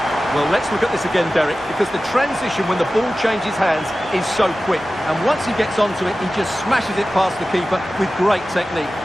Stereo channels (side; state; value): both; normal; correlation 0.95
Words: Well, let's look at this again, Derek, because the transition when the ball changes hands is so quick. And once he gets onto it, he just smashes it past the keeper with great technique.